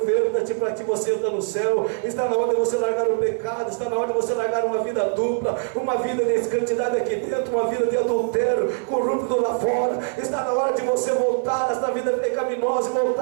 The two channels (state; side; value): silent; left; 62 dB below the other